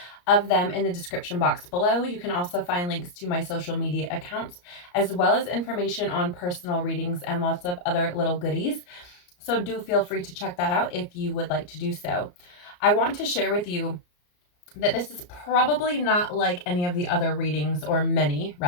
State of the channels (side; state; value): right; late; 34 ms